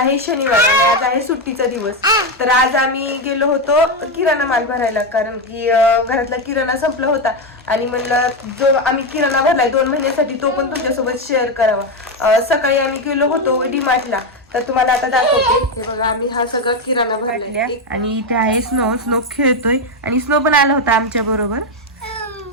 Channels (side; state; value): both; normal; correlation 0.08